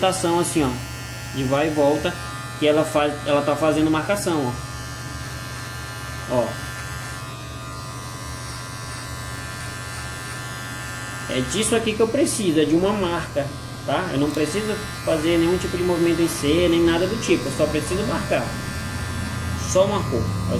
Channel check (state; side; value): identical; both; correlation 1.00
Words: assim, ó, de vai e volta, que ela tá fazendo marcação, ó. Ó. É disso aqui que eu preciso, é de uma marca, tá? Eu não preciso fazer nenhum tipo de movimento em C, nem nada do tipo, eu só preciso marcar. Só marcou, é o